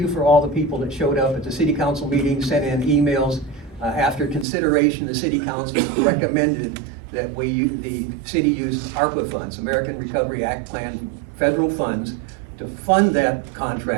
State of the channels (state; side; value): drops out; left; at 4.5 s